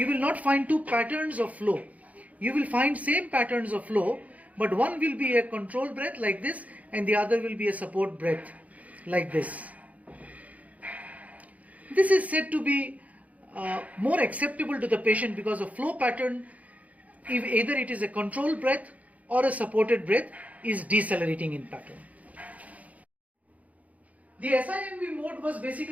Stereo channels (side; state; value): left; late; 0.071 ms